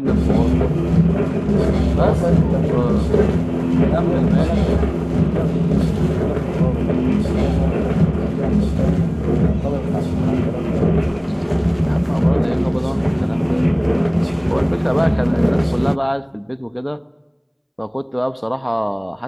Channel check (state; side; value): identical; both; correlation 1.00